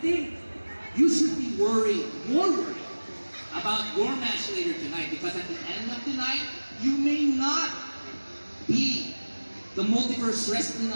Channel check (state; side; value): inverted; both; correlation -1.00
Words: you should be more worried about your match later tonight, because at the end of the night, you may not be the Multiverse Wrestling